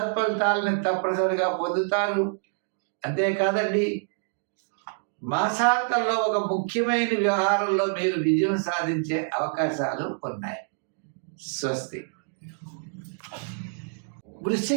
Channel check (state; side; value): silent; left; digital silence